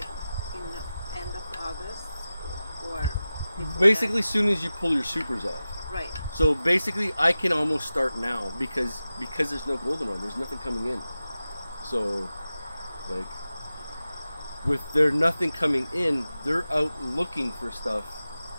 in the end of August or before Basically, as soon as you pull your supers off. that? Right. So basically, I can almost start now because there's no golden one. There's nothing coming in. So, like, with there nothing coming in, they're out looking for stuff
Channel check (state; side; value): inverted; both; correlation -0.94